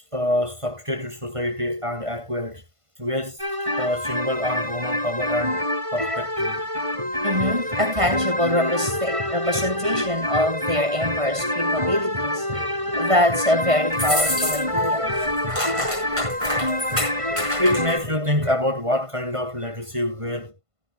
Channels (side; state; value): left; late; 1.5 ms